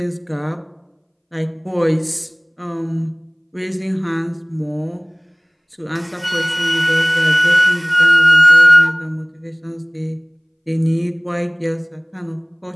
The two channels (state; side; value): identical; both; correlation 1.00